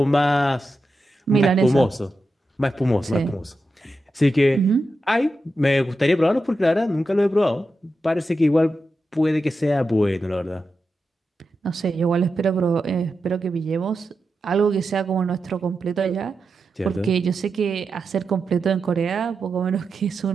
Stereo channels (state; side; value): normal; both; correlation 0.89